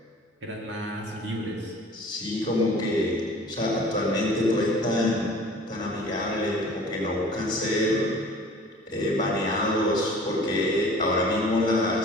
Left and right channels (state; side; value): normal; both; correlation 0.46